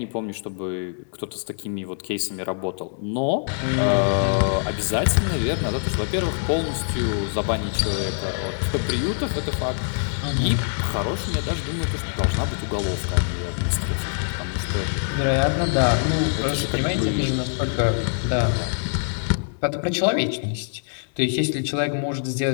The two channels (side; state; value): right; silent; digital silence